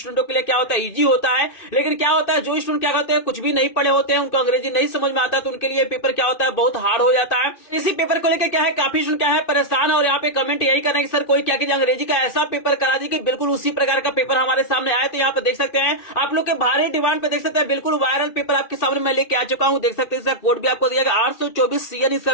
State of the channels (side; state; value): right; late; 2.6 ms